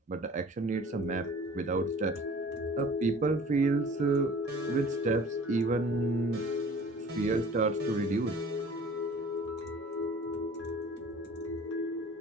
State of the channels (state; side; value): normal; both; correlation 0.46